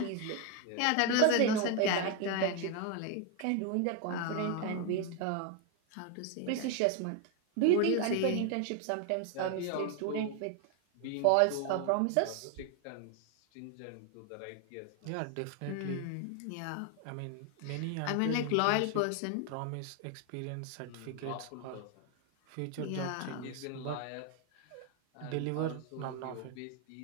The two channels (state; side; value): different; both; correlation 0.01